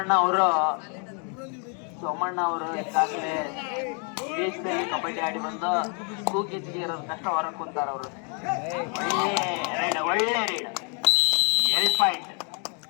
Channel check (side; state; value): right; quieter; 38.6 dB